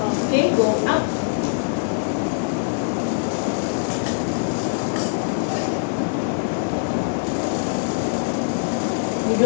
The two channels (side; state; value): right; silent; digital silence